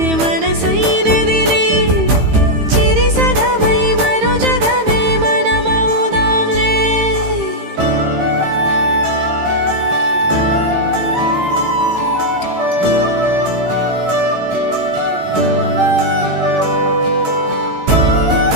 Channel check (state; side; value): late; left; 15 ms